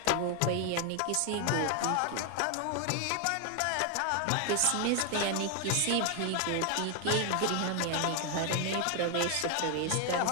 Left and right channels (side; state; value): both; different; correlation 0.00